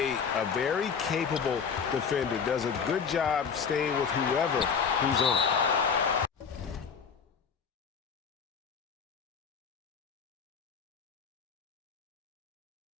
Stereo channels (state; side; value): quieter; right; 6.4 dB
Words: a very capable defender, does a good job staying with whoever he's on.